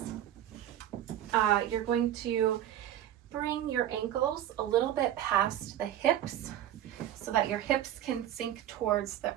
you're going to bring your ankles a little bit past the hips so that your hips can sink towards the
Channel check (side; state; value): left; quieter; 11.7 dB